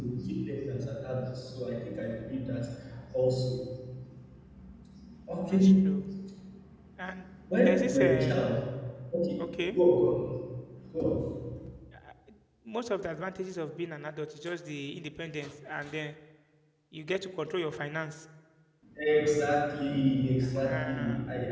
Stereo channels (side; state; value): both; identical; correlation 1.00